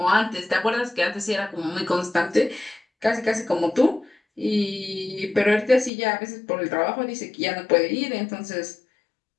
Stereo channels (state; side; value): drops out; right; at 5.9 s